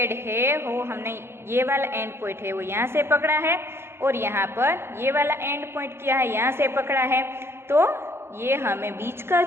है वो हमने ये वाला एंड पॉइंट है वो यहाँ से पकड़ा है और यहाँ पर ये वाला एंड पॉइंट क्या है यहाँ से पकड़ा है, तो ये हमें बीच का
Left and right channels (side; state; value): left; late; 0.12 ms